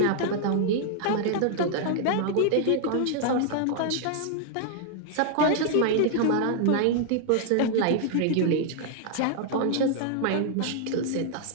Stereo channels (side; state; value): both; different; correlation 0.00